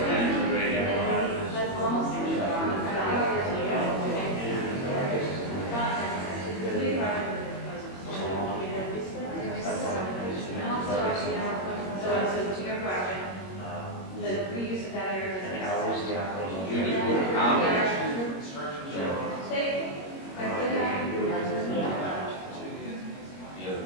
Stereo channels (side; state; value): right; late; 21 ms